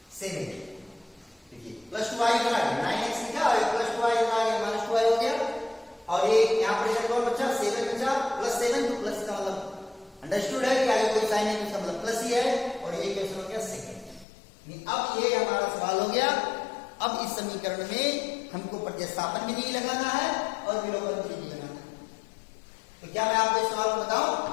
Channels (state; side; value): drops out; right; at 14.2 s